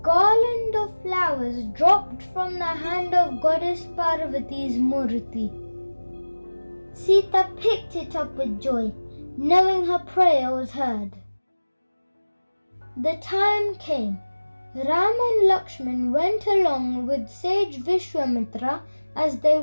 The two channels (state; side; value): inverted; both; correlation -1.00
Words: of flowers dropped from the hand of Goddess Parvati's murti. Sita picked it up with joy, knowing her prayer was heard. The time came. Ram and Lakshman went along with Sage Vishwamitra as they